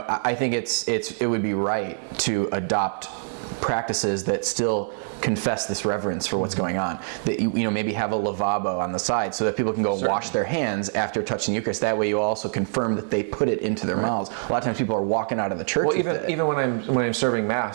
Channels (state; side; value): silent; left; digital silence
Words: think it would be right to adopt practices that still confess this reverence for what's going on. That maybe have a lavabo on the side so that people can go wash their hands after touching the Eucharist. That way you also confirm that they put it into their mouths. A lot of times people are walking out of the church with it. Even when I'm serving